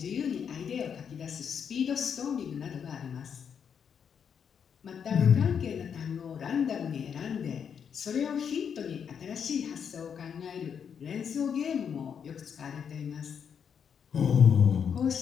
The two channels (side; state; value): right; quieter; 7.4 dB